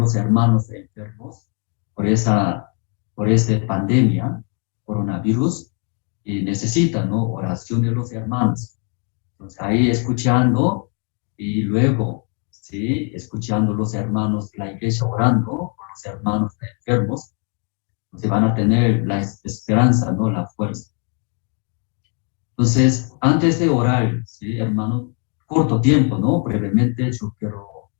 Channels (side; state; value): right; quieter; 39.4 dB